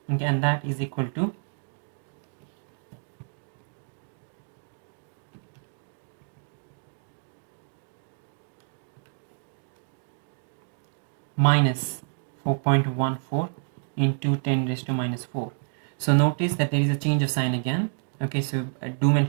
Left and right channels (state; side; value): silent; left; 58 dB below the other